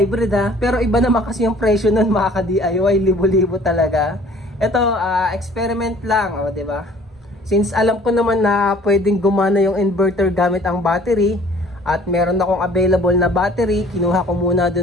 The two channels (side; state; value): both; normal; correlation 0.52